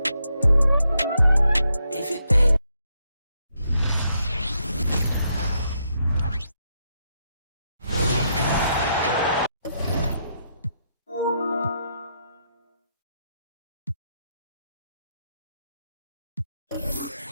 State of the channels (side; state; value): both; inverted; correlation -0.79